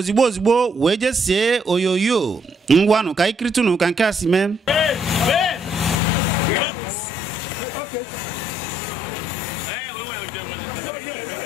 wee jesie oyoyo. Ngwanụ ka ikritunu ka nke a si mee.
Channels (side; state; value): right; drops out; at 6.0 s